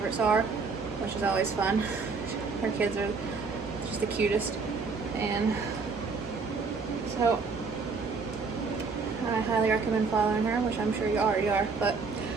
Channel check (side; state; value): left; quieter; 4.7 dB